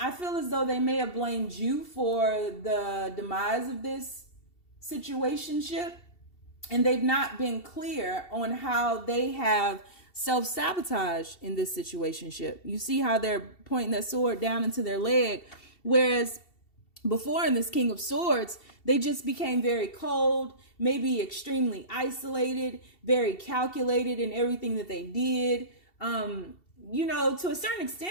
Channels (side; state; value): right; late; 2.7 ms